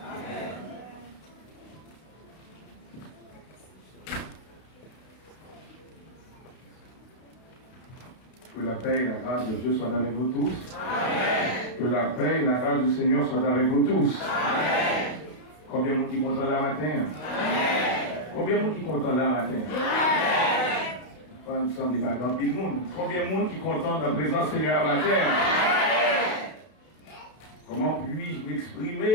Que la paix et la grâce de Dieu soient avec vous tous. Amen. Que la paix et la grâce du Seigneur soient avec vous tous. Amen. Combien de monde qui est content là matin? Amen. Combien de monde qui est content là matin? Amen. Il me semble qu'il y a grand pile de monde. Combien de monde qui est content de la présence du Seigneur matin? Amen. Comment puis-je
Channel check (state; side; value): late; right; 32 ms